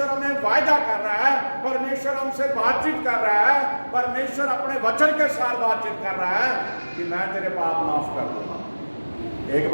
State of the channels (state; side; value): inverted; both; correlation -1.00